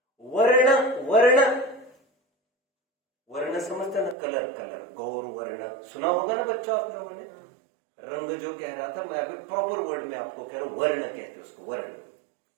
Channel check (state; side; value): drops out; left; at 4.2 s